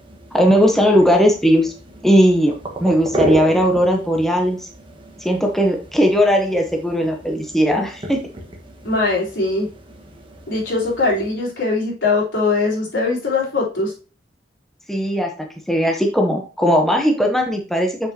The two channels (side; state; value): both; normal; correlation 0.67